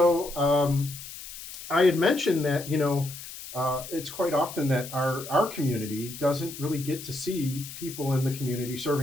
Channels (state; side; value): noise; left; hiss, 12 dB below the sound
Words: I had mentioned that it's quite often that our community doesn't really get to see people in the community